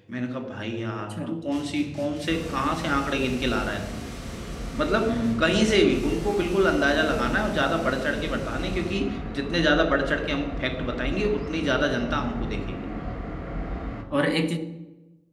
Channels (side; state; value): both; identical; correlation 1.00